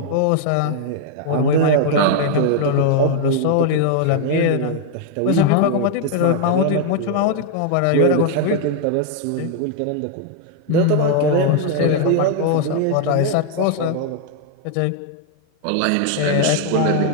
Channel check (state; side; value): different; both; correlation 0.00